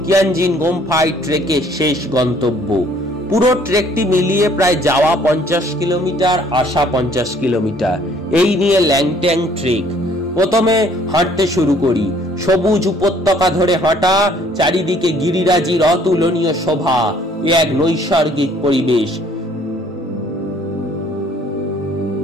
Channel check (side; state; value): both; normal; correlation 0.59